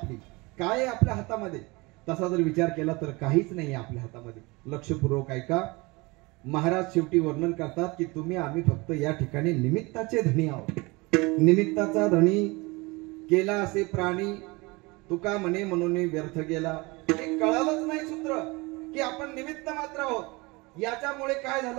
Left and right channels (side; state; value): left; quieter; 24.9 dB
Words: काय आहे आपल्या हातामध्ये? तसा जर विचार केला तर काहीच नाही आपल्या हातामध्ये. लक्षपूर्वक ऐका. महाराज शेवटी वर्णन करतात की तुम्ही आम्ही फक्त या ठिकाणी निमित्ताचे धनी आहोत. निमित्ताचा धनी केला असे प्राणी, तुका म्हणे म्हणून व्यर्थ गेला. हे कळालंच नाही सूत्र की आपण निमित्त मात्र आहोत. याच्यामुळे काय